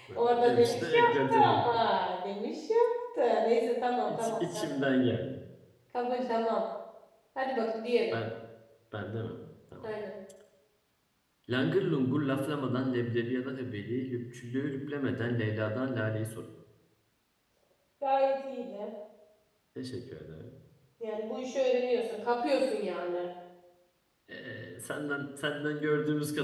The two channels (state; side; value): identical; both; correlation 1.00